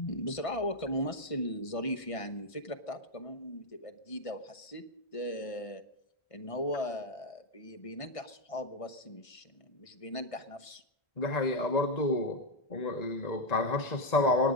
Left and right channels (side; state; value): right; late; 1.5 ms